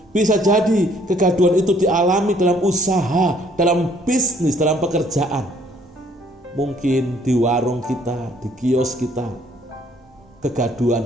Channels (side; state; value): both; normal; correlation 0.62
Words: Bisa jadi kegaduhan itu dialami dalam usaha, dalam bisnis, dalam pekerjaan. Mungkin di warung kita, di kios kita,